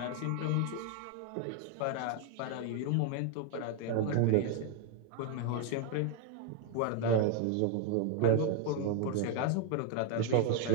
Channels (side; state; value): both; different; correlation 0.01